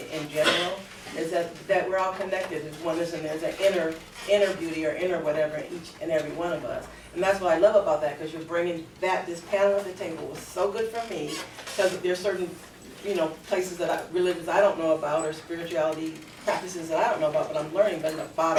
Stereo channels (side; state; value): both; identical; correlation 1.00